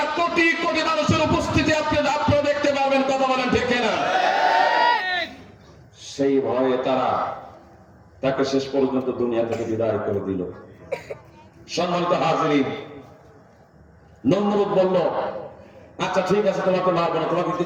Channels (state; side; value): identical; both; correlation 1.00